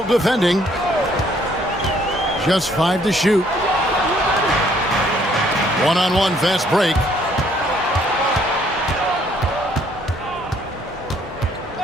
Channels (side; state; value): both; normal; correlation 0.64